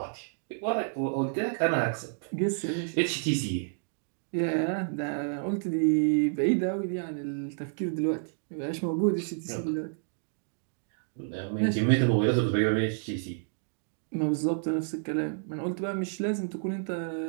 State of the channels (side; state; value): left; silent; digital silence